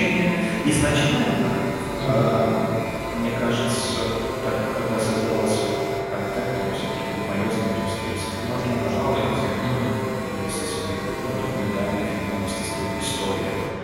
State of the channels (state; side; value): identical; both; correlation 1.00